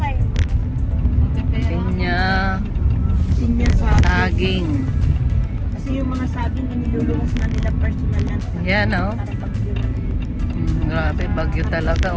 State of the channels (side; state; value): both; identical; correlation 1.00